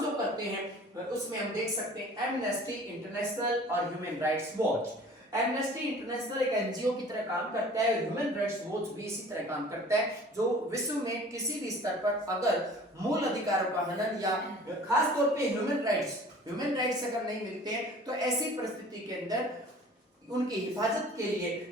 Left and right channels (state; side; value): normal; both; correlation 0.47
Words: जो करते हैं उसमें हम देख सकते हैं एमनेस्टी इंटरनेशनल और human rights watch. Amnesty international एक एनजीओ की तरह काम करता है, ह्यूमन राइट्स वॉच भी इसी तरह काम करता है, जो विश्व में किसी भी स्तर पर अगर मूल अधिकारों का हनन या खास तौर पे ह्यूमन राइट्स अगर नहीं मिलते हैं तो ऐसी परिस्थिति के अंदर उनकी हिफाजत के